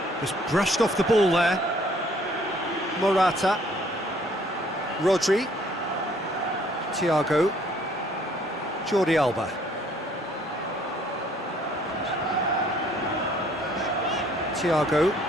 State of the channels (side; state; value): both; normal; correlation 0.61